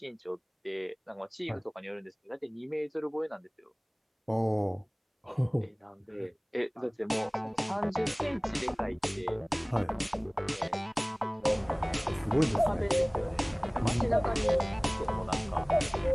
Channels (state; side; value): identical; both; correlation 1.00